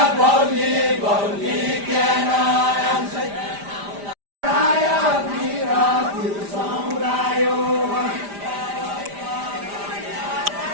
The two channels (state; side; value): late; left; 5.0 ms